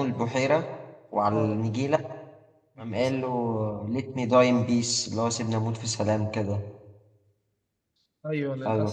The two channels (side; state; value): both; identical; correlation 1.00